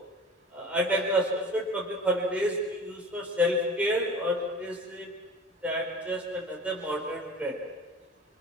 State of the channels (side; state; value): both; normal; correlation 0.40